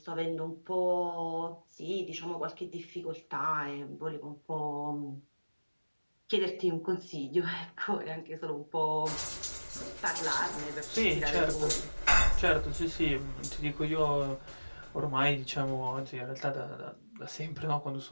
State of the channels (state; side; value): inverted; both; correlation -1.00